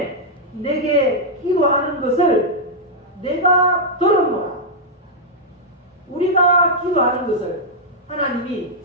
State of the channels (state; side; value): normal; both; correlation -0.05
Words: 내게 기도하는 것을 내가 들었노라. 우리가 기도하는 것을 하나님이